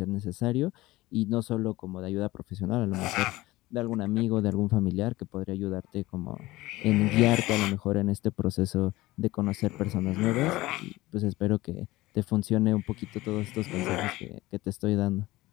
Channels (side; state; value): right; quieter; 18.7 dB